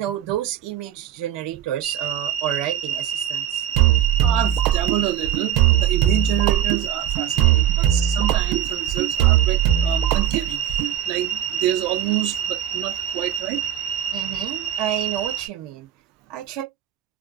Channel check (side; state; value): left; quieter; 10.8 dB